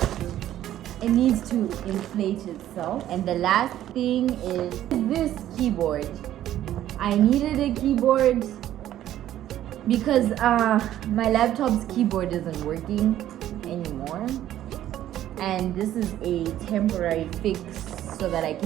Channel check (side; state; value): left; quieter; 12.4 dB